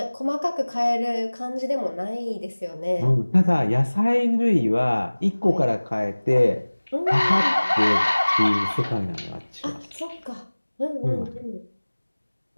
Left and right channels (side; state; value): both; inverted; correlation -1.00